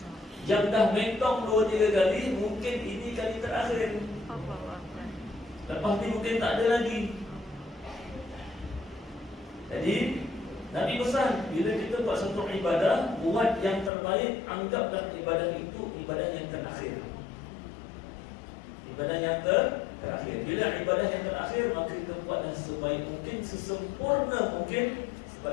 Yang dah mentong 2-3 kali, mungkin ini kali terakhir. Lepas ni mungkin tak ada lagi. Jadi Nabi pesan, bila kita buat satu ibadah, buat yang terbaik. Anggaplah ibadah itu ibadah yang terakhir. Ibadah yang terakhir. Bila ibadah yang terakhir, maka kita buatlah sebaik mungkin, sesempurna mungkin.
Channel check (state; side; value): drops out; right; at 13.9 s